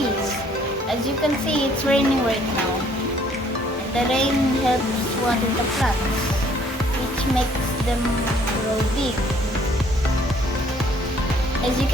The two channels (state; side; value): normal; both; correlation 0.61